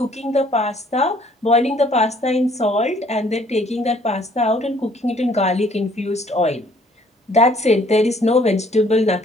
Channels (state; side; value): normal; both; correlation 0.60